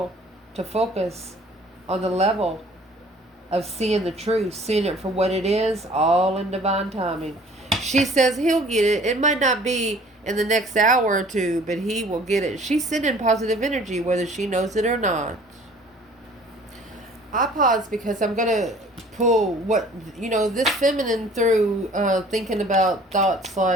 to focus on the level of seeing the truth, seeing it for what it is, all in divine timing. She says he'll get it. It might not be in the next hour or two, but he will get it. She's sending positive energy, whether she knows it or not. I pause because I'm going to pull what, this feminine through thinking about thoughts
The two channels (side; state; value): both; normal; correlation 0.52